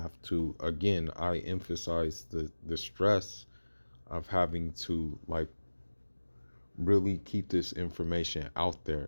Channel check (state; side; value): inverted; both; correlation -1.00